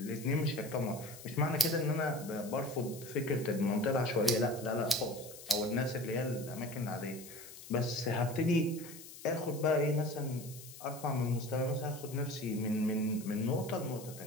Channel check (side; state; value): left; noise; hiss, 15 dB below the sound